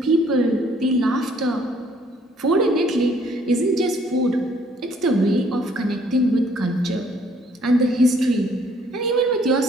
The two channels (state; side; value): normal; both; correlation 0.63